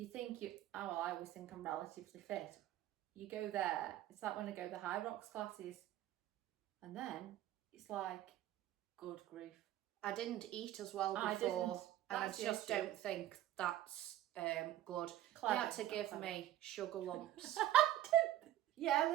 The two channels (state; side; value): quieter; left; 13.4 dB